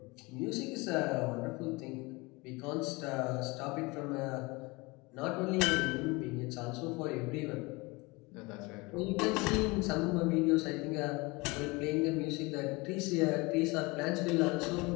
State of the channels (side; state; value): right; quieter; 25.1 dB